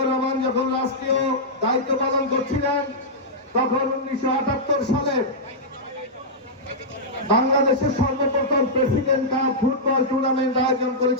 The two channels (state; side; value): normal; both; correlation -0.10